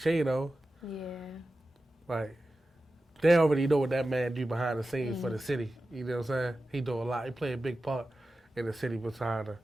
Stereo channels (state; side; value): normal; both; correlation 0.94